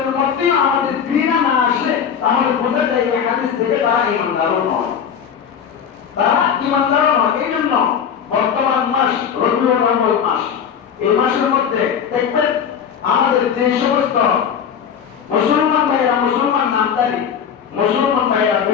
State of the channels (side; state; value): right; quieter; 7.7 dB